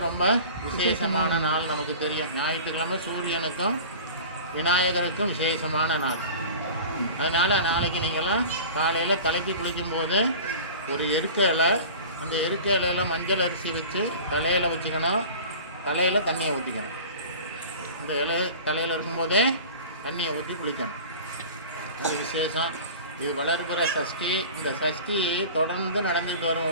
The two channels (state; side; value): inverted; both; correlation -0.38